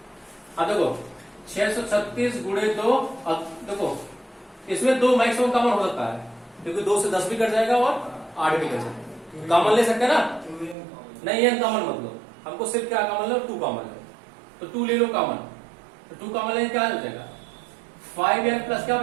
अब देखो 636 गुणे 2, अब देखो इसमें 2 मैक्सिमम कॉमन हो सकता है, क्योंकि 2 से 10 भी कट जाएगा और 8 भी कट जाएगा। कॉमन ले सकते हैं ना, नहीं एन कॉमन मत लो, हमको सिर्फ क्या कॉमन लो, 2 कॉमन लो, तो 2 ले लो कॉमन, तो 2 कॉमन लेंगे क्या हो जाएगा 5n प्लस क्या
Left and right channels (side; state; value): left; drops out; at 10.8 s